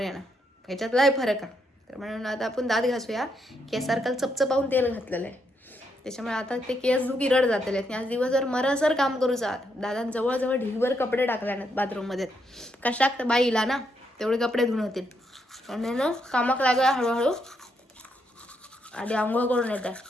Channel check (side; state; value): both; normal; correlation 0.78